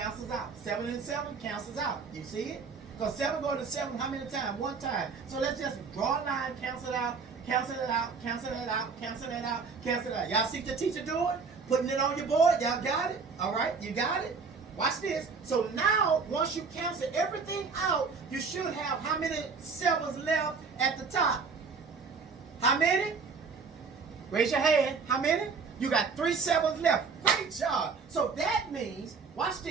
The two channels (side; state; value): left; quieter; 5.1 dB